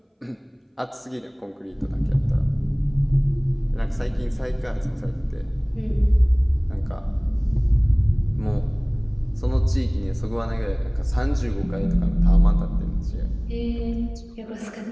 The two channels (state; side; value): identical; both; correlation 1.00